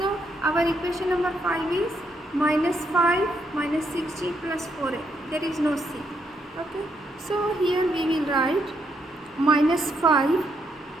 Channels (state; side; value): normal; both; correlation 0.77